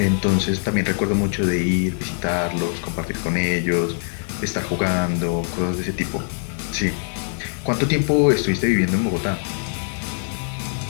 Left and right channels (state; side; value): silent; right; 62 dB below the other